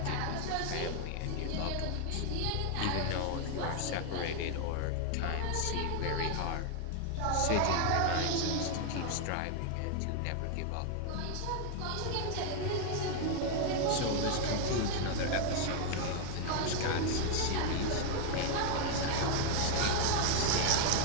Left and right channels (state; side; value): different; both; correlation 0.00